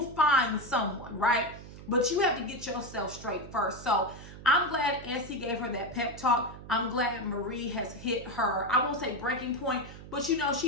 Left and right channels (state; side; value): noise; right; hum, 15 dB below the sound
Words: find someone, right? But you have to get yourself straight first. So I'm glad Essie gave her that pep talk. I'm glad Marie has hit her, I won't say breaking point, but